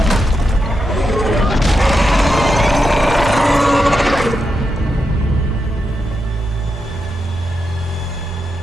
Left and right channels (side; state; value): both; normal; correlation 0.85